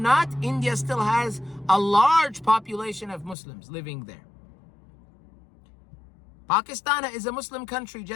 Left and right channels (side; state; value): right; drops out; at 3.4 s